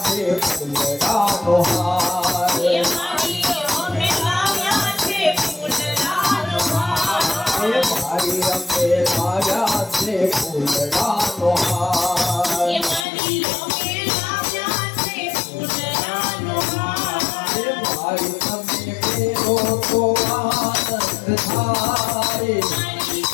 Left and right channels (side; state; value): right; drops out; at 13.1 s